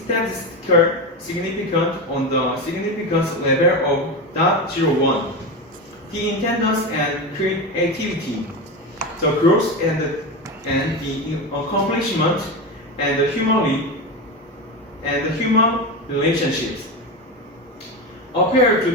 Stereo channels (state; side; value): normal; both; correlation 0.19